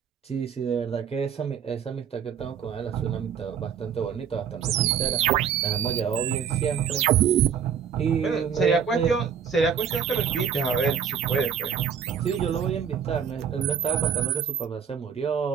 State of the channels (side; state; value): left; quieter; 7.5 dB